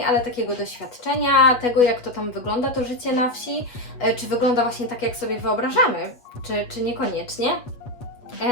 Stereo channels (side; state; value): right; late; 8.2 ms